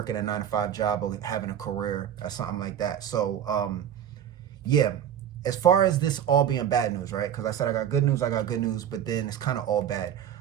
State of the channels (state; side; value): quieter; left; 9.6 dB